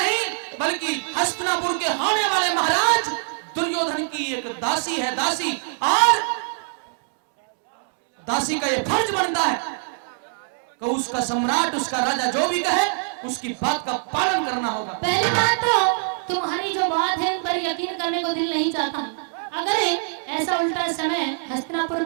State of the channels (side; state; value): left; silent; digital silence